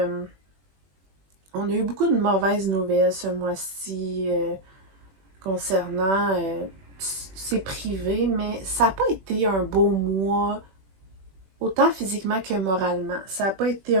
on a eu beaucoup de mauvaises nouvelles ce mois-ci concernant, c'est privé, mais ça n'a pas été un beau mois, autant physiquement que moralement. Ça n'a pas été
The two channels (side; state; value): left; late; 21 ms